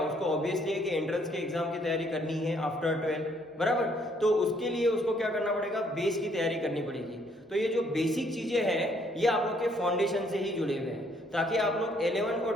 उसको ऑब्वियसली है कि एंट्रेंस के एग्जाम की तैयारी करनी है आफ्टर 12, बराबर। तो उसके लिए उसको क्या करना पड़ेगा, बेस की तैयारी करनी पड़ेगी। तो ये जो बेसिक चीजें हैं ये आप लोग के फाउंडेशन से ही जुड़े हुए हैं, ताकि आप लोग 11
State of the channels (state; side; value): normal; both; correlation 0.67